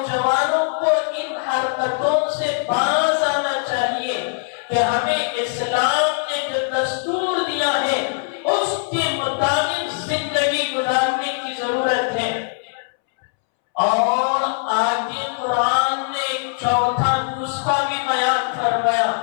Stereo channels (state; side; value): silent; right; 65 dB below the other